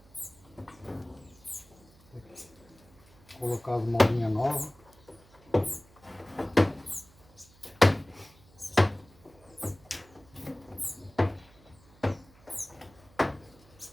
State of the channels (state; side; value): noise; right; hum, 27 dB below the sound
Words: Colocar as molinhas novas.